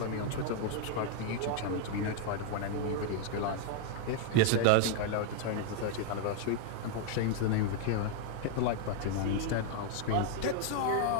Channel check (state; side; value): different; both; correlation 0.00